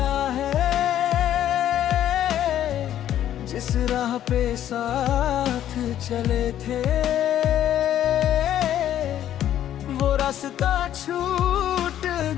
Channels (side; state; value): right; quieter; 11.3 dB